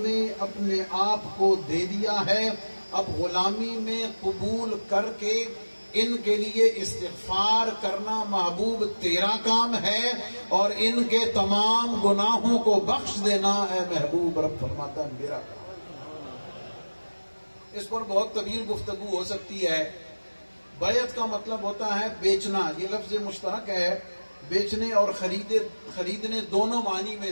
اپنے آپ کو دے دیا ہے، اب غلامی میں قبول کر کے ان کے لیے استغفار کرنا محبوب تیرا کام ہے، اور ان کے تمام گناہوں کو بخش دینا اے محبوب رب فرماتا ہے میرا کام۔ اس پر بہت طویل گفتگو ہو سکتی ہے۔ بیعت کا مطلب ہوتا ہے بیچنا، یہ لفظ مشترک ہے، بیچنے اور خریدنے دونوں معنی میں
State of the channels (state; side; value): inverted; both; correlation -1.00